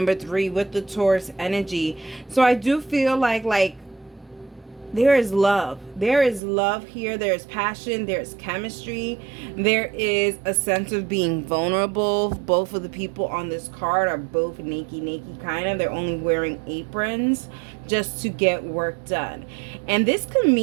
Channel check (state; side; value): drops out; left; at 6.4 s